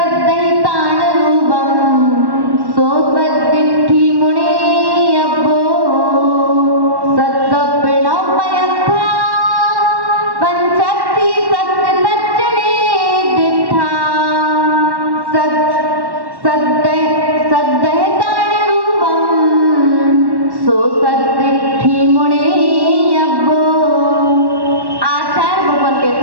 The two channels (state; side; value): late; left; 1.1 ms